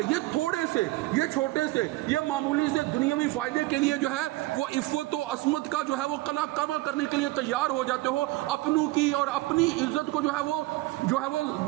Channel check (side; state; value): left; quieter; 19.3 dB